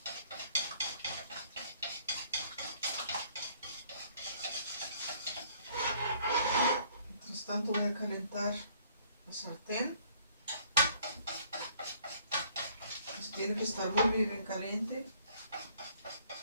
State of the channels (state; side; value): inverted; both; correlation -0.61